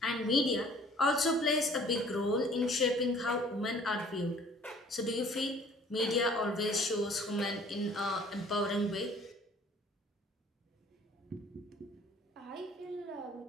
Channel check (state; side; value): normal; both; correlation 0.54